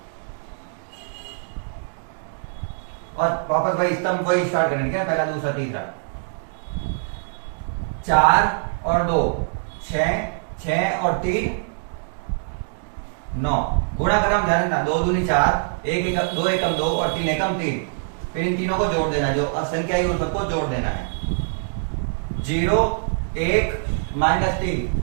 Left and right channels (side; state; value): left; silent; digital silence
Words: और वापस वही स्तंभ वही स्टार्ट करने क्या, पहला दूसरा तीसरा। 4 और 2 6, 6 और 3 9, गुणा कर हम ध्यान देना। 2 दूनी 4, 1 एकम 2 एकम 2 और 3 एकम 3, फिर इन तीनों को जोड़ देना है, जो असंख्या है उन सबको जोड़ देना है। 0 1 माइनस